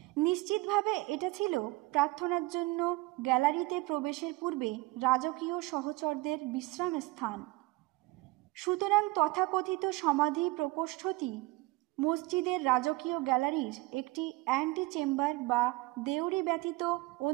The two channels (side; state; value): left; quieter; 21.7 dB